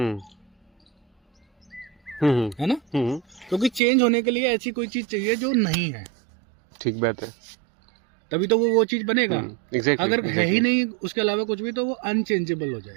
है ना? क्योंकि चेंज होने के लिए ऐसी कोई चीज चाहिए जो नहीं है। ठीक बात है, तभी तो वो चीज बनेगा। अगर है ही नहीं उसके अलावा कुछ भी, तो वो अनचेंजेबल हो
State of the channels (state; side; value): drops out; left; at 3.8 s